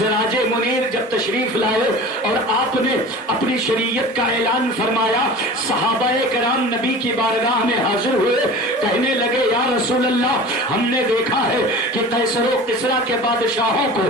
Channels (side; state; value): both; normal; correlation 0.38